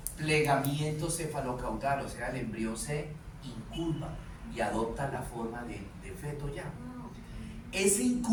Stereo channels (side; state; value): both; identical; correlation 1.00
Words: plegamiento cefalocaudal, o sea, el embrión se incurva y adopta la forma de feto ya. Ese